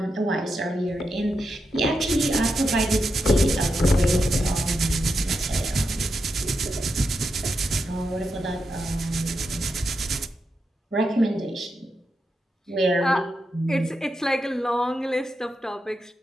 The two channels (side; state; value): both; normal; correlation 0.86